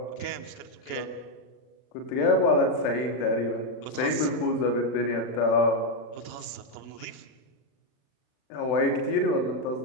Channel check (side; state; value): right; late; 39 ms